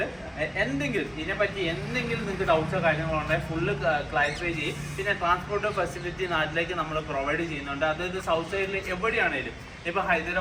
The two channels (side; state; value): both; identical; correlation 1.00